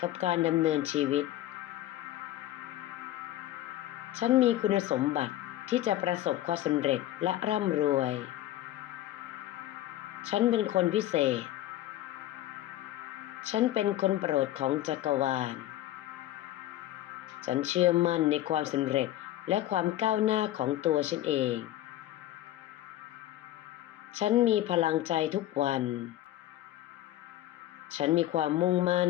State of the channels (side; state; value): right; quieter; 14.1 dB